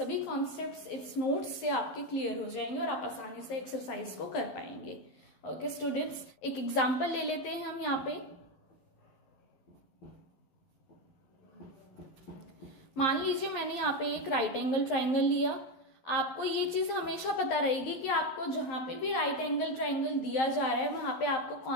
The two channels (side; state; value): right; late; 11 ms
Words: कॉन्सेप्ट्स इट्स नोट्स से आपके क्लियर हो जाएंगे और आप आसानी से एक्सरसाइज को कर पाएंगे। ओके स्टूडेंट्स, एक एग्जाम्पल ले लेते हैं हम यहाँ पे। मान लीजिए मैंने यहाँ पे एक राइट एंगल ट्राइंगल लिया। आपको ये चीज हमेशा पता रहेगी कि आपको जहां पे भी राइट एंगल ट्राइंगल दिया जा रहा है वहां पे आपको